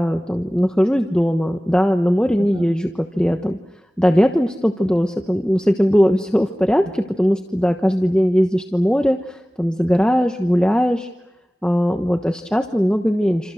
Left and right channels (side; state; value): both; normal; correlation 0.98